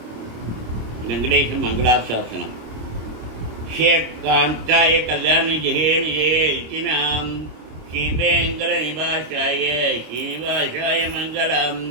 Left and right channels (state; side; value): late; left; 26 ms